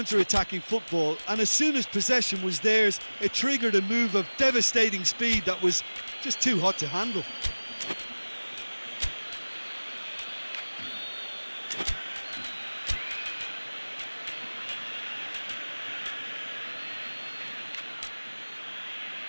football, and as soon as possession was theirs, it triggered a move of devastating speed that was just too hot to handle.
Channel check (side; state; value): both; inverted; correlation -1.00